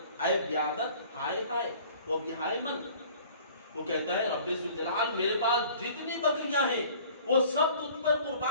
اے بیادت ہائے ہائے وہ بہائے من۔ وہ کہتا ہے رب ذوالجلال میرے پاس جتنی بکریاں ہیں وہ سب تجھ پر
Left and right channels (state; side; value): inverted; both; correlation -0.50